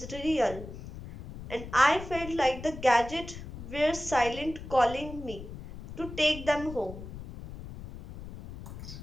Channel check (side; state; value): left; noise; rumble, 12 dB below the sound